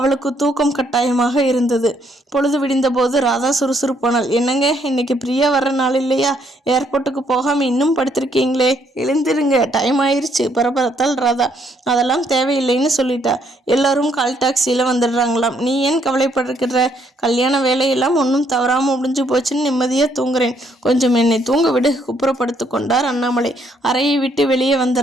தூக்கம் கட்டாயமாக இருந்தது. பொழுது விடிந்த போது ராதா சுறுசுறுப்பானாள். என்னங்க, இன்னைக்கு பிரியா வர்ற நாள் இல்லையா? ஏர்போர்ட்டுக்கு போகாமல் இன்னும் படுத்திருக்கீங்களே, எழுந்திருங்க, டைம் ஆயிடுச்சு பரபரத்தால் ராதா. அதெல்லாம் தேவையில்லைன்னு சொல்லிட்டா. எல்லாரும் கால் டாக்ஸியில் வந்துடுறாங்களாம். நீ ஏன் கவலைப்படுகிற? கல்யாண வேலையெல்லாம் ஒன்றும் தவறாமல் முடிஞ்சு போச்சுன்னு நிம்மதியாக தூங்குறேன். கொஞ்சம் என்னை தூங்க விடு, குப்புறப்படுத்து கொண்டார் அண்ணாமலை. அறையை விட்டு வெளியே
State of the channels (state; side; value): normal; both; correlation 0.70